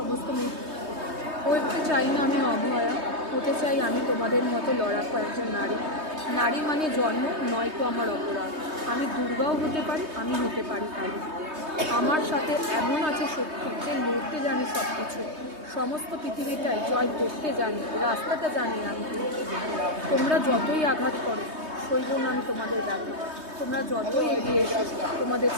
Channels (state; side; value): late; left; 3.2 ms